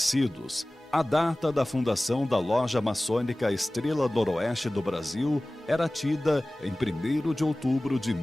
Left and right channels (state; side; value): normal; both; correlation 0.98